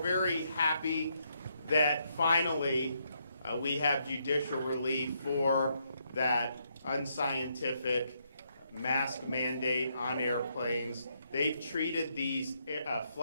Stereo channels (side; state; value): both; inverted; correlation -0.76